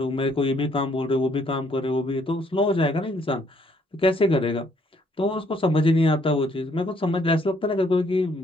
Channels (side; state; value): both; normal; correlation 0.67